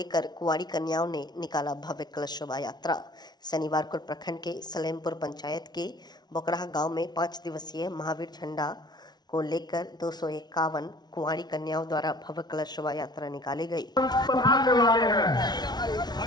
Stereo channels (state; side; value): late; right; 0.20 ms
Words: कुंवारी कन्याओं ने निकाला भव्य कलश शोभा यात्रा। शनिवार को प्रखंड के सलेमपुर पंचायत के बोकराहा गांव में 5 दिवसीय महावीर झंडा को लेकर 251 कुंवारी कन्याओं द्वारा भव्य कलश शोभा यात्रा निकाली गई।